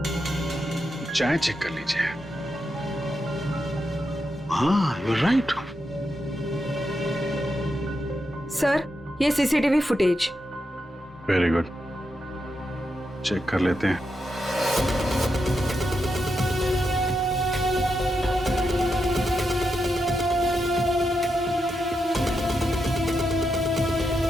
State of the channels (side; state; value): both; normal; correlation 0.85